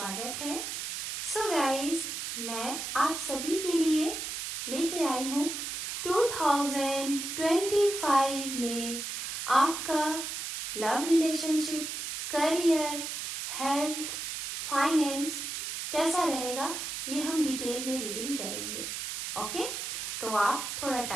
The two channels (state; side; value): noise; right; hiss, 5 dB below the sound